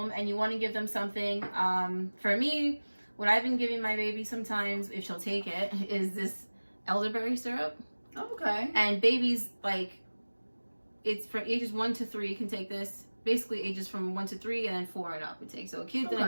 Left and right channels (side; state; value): both; inverted; correlation -1.00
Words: and you want to give them something, for me, what I've been giving my baby sometimes, if she'll take it, is this elderberry syrup. Okay. And babies, like, it's for ages 1 to 3 can take this. Basically, ages from 1 to 3 and then 4 and up would take. So kids and